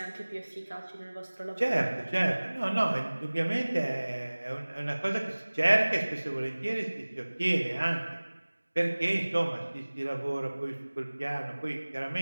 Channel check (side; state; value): both; inverted; correlation -1.00